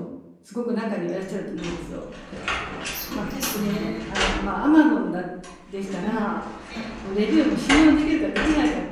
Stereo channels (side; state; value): both; identical; correlation 1.00